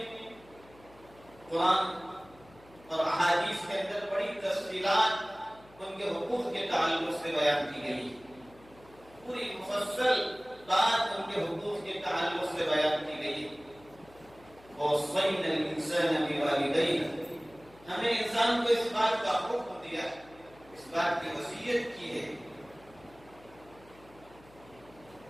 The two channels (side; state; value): left; noise; hum, 25 dB below the sound